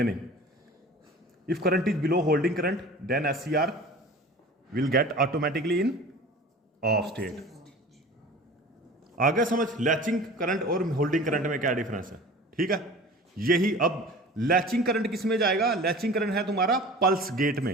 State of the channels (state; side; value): normal; both; correlation 0.40